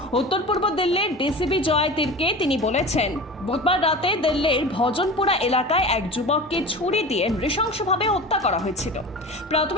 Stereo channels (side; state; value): both; normal; correlation 0.33